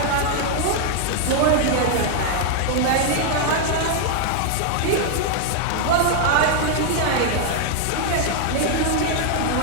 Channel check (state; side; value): different; both; correlation 0.00